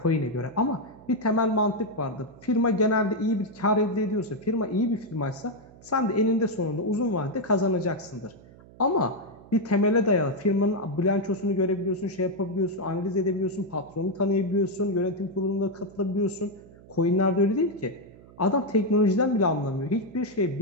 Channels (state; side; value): noise; right; hum, 22 dB below the sound